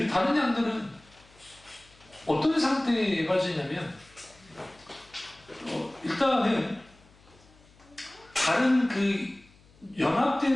다른 양들은 어떤 상태에 빠지냐면 일단은 다른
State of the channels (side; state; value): left; noise; hum, 27 dB below the sound